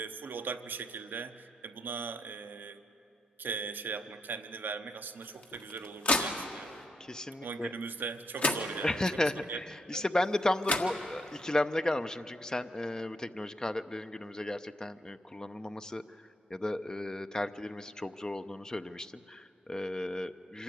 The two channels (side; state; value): both; normal; correlation 0.78